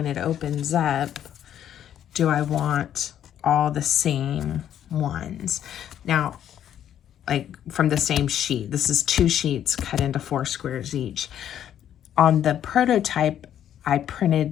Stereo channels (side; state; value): right; quieter; 10.3 dB